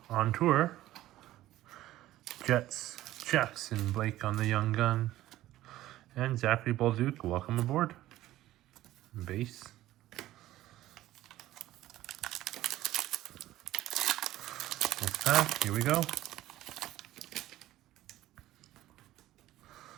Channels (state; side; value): quieter; left; 15.0 dB